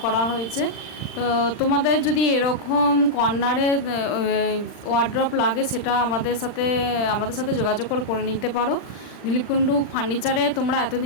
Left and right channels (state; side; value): late; right; 39 ms